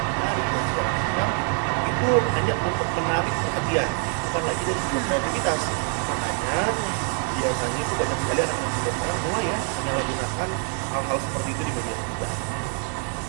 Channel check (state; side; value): quieter; left; 37.2 dB